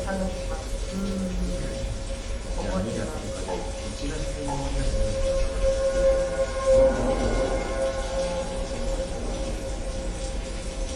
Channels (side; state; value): both; identical; correlation 1.00